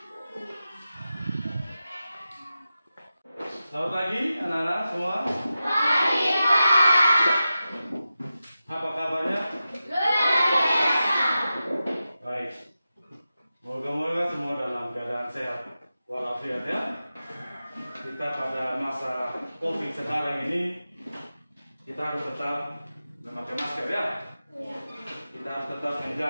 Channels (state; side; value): inverted; both; correlation -0.92